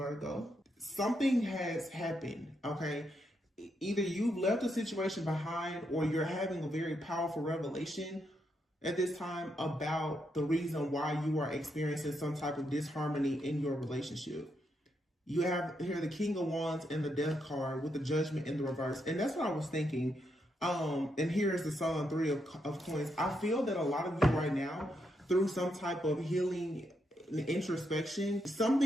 Something has happened, okay? Either you've left a situation behind or you're having a very powerful revelation at this time about the reason why you are experiencing some type of disharmony in your relationship. You have here the King of Wands and the Death card with the Judgment in the reverse. And that's what I was thinking. And here is the Sun, Three of Coins. I feel that a lot of you right now, through some type of healing and introspection,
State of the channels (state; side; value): normal; both; correlation 0.80